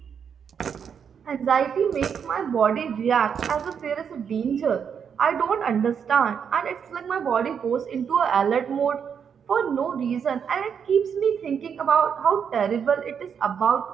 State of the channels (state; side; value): quieter; left; 7.3 dB